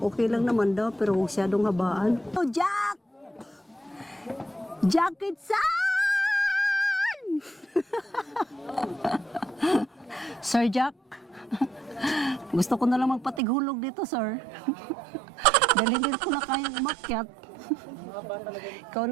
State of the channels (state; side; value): drops out; left; at 13.4 s